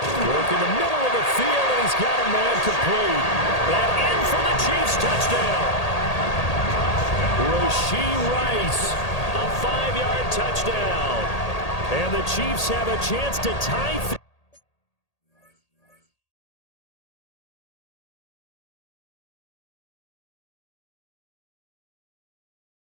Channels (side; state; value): right; late; 1.8 ms